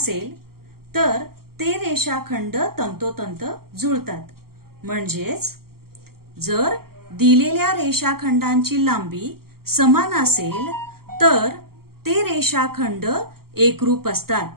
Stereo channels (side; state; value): left; late; 0.94 ms